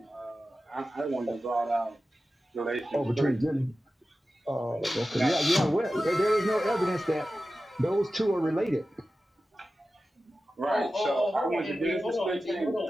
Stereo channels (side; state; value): both; normal; correlation 0.94